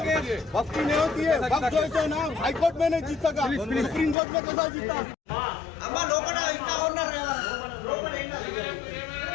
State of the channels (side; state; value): right; drops out; at 4.2 s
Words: वक्फ की नहीं होती है वक्फ जो है ना हाई कोर्ट में नहीं जीत सका सुप्रीम कोर्ट में कैसा जीता అమ్మ లోపల ఇంకా ఉన్నారు కదా లోపల